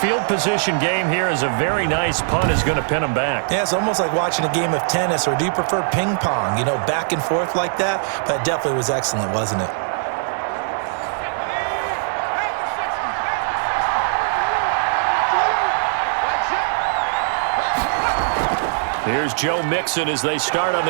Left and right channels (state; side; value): silent; left; digital silence